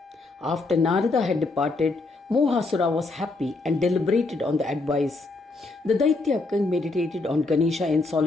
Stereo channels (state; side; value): quieter; right; 3.4 dB